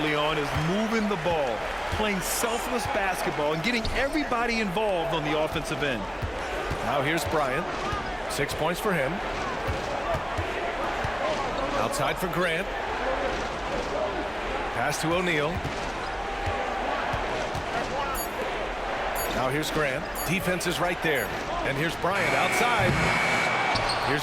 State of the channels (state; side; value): identical; both; correlation 1.00